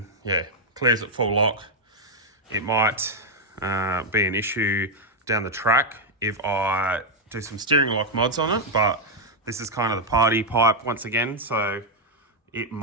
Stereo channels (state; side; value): normal; both; correlation 0.00